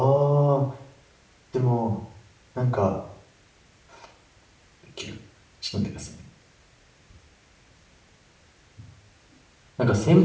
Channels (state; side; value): identical; both; correlation 1.00